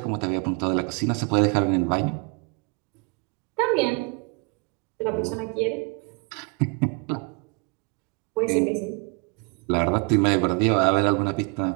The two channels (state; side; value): quieter; left; 32.5 dB